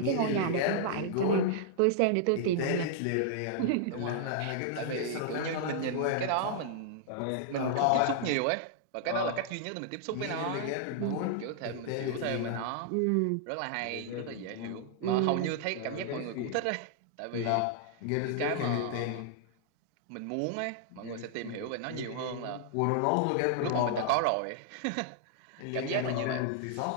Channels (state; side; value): different; both; correlation -0.01